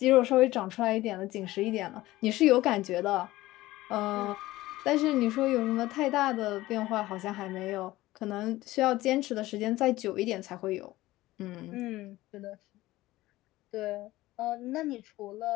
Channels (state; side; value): quieter; right; 17.4 dB